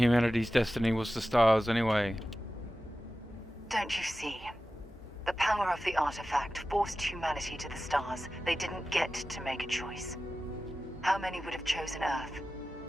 destiny was the stars anyway. Don't you see? The power of the artifact forced humanity to the stars. They didn't get to make a choice. How many would have chosen Earth?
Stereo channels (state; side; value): normal; both; correlation 0.94